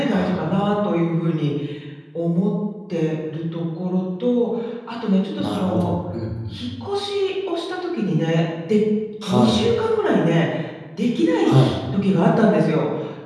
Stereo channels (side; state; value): both; identical; correlation 1.00